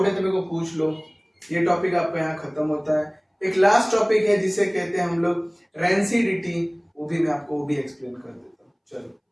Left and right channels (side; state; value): both; identical; correlation 1.00